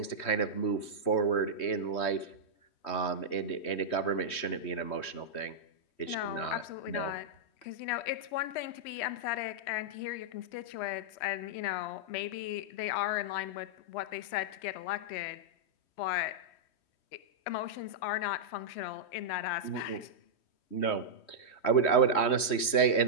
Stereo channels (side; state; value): right; late; 3.1 ms